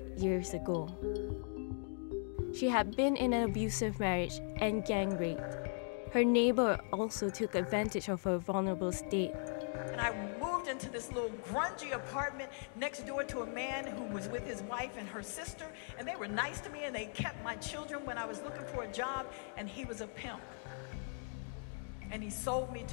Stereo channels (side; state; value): right; silent; 52 dB below the other